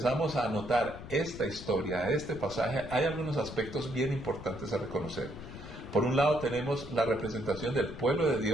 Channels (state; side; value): noise; left; rumble, 12 dB below the sound